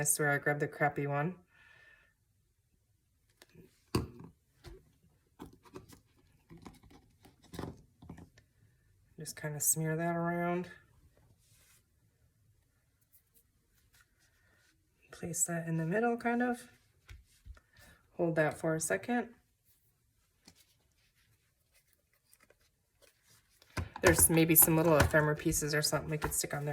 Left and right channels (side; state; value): both; identical; correlation 1.00